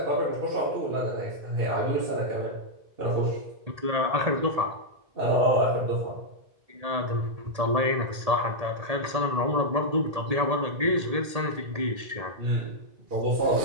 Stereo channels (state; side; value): late; left; 1.8 ms